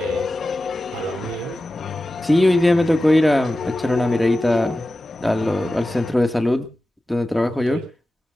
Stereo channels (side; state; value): both; normal; correlation 0.94